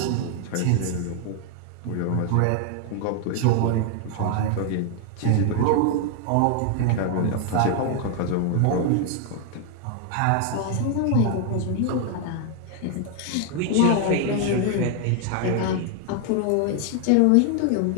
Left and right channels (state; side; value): different; both; correlation 0.00